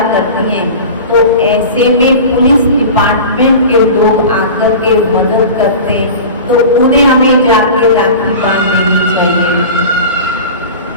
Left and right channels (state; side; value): inverted; both; correlation -0.34